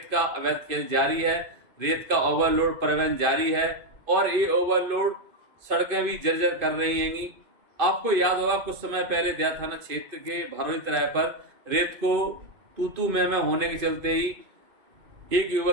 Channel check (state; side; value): late; left; 2.5 ms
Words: का अवैध खेल जारी है, रेत का ओवरलोड परिवहन जारी है, और ये ओवरलोड सड़कें भी जर्जर कर रही हैंगी। आपको याद होगा कुछ समय पहले दया थाना क्षेत्र के भरौली तराई पर रेत को तू मैं होने के चलते ही एक